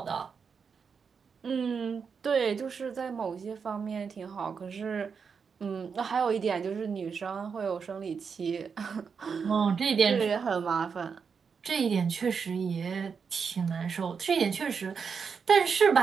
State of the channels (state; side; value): quieter; left; 6.0 dB